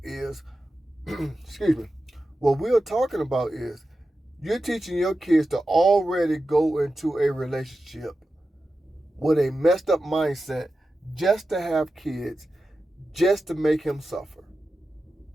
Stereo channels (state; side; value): normal; both; correlation 0.92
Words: is, excuse me, what we are talking about is you're teaching your kids to already go into a relationship with a messed up mindset just to have kids, just to make him suffer.